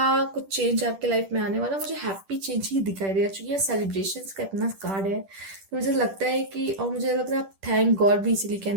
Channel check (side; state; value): left; late; 10 ms